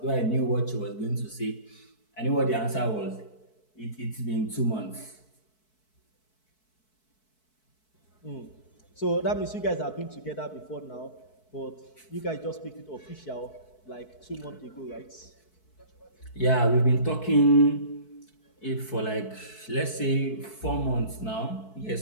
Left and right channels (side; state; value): right; late; 4.6 ms